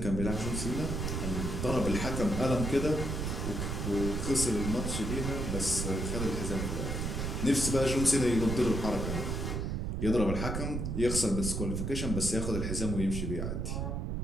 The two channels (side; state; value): right; noise; rumble, 2 dB below the sound